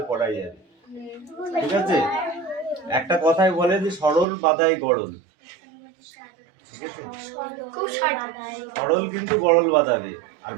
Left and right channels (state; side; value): drops out; left; at 4.2 s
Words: করাই যাবে, ঠিক আছে? একটা কথাই বলে যে সরল বাদাই গড়ল, ঠিক আছে? সরল কিন্তু গড়ল বাঁধাবে। আর